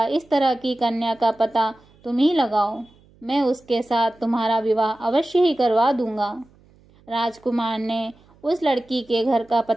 इस तरह की कन्या का पता तुम ही लगाओ। मैं उसके साथ तुम्हारा विवाह अवश्य ही करवा दूंगा। राजकुमार ने उस लड़की के घर का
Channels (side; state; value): right; noise; hum, 30 dB below the sound